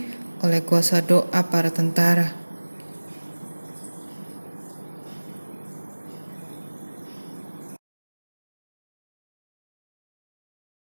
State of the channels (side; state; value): both; inverted; correlation -1.00